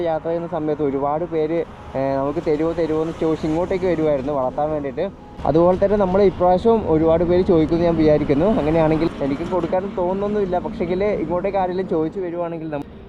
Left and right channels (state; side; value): identical; both; correlation 1.00